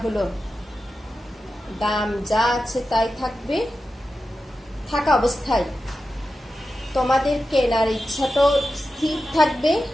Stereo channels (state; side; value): normal; both; correlation 0.92